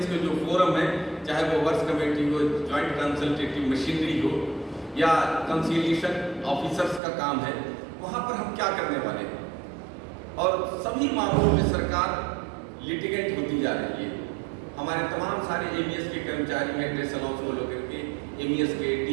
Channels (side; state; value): left; drops out; at 7.0 s